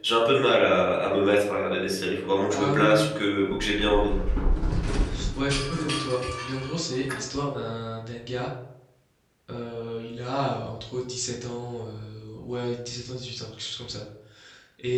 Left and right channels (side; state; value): both; identical; correlation 1.00